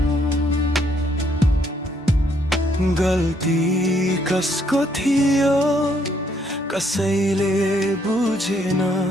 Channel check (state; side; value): normal; both; correlation 0.70